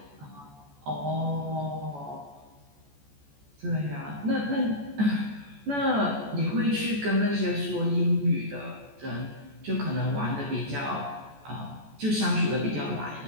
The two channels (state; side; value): late; left; 14 ms